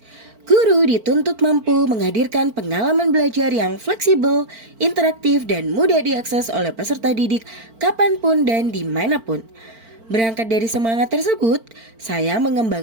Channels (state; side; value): late; left; 4.5 ms